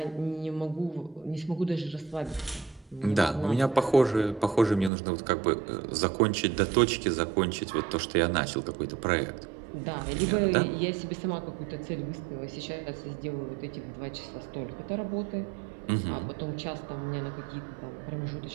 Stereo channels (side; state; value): left; drops out; at 4.9 s